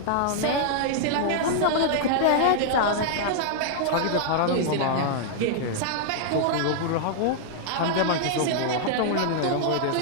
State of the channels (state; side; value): different; both; correlation -0.01